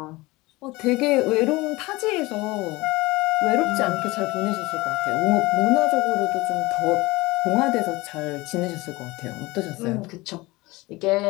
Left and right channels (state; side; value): quieter; right; 21.6 dB